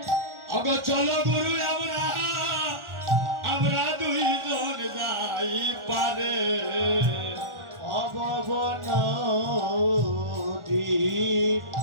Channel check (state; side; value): late; left; 1.4 ms